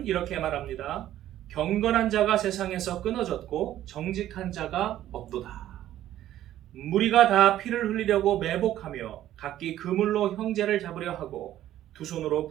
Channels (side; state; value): left; quieter; 12.8 dB